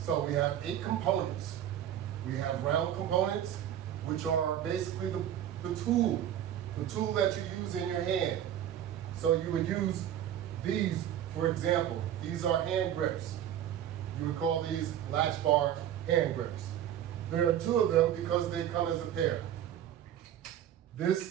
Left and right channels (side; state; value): left; quieter; 10.8 dB